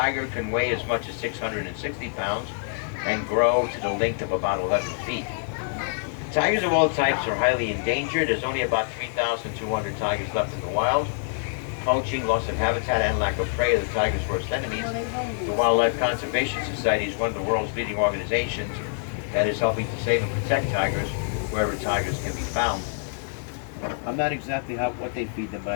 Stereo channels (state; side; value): silent; right; digital silence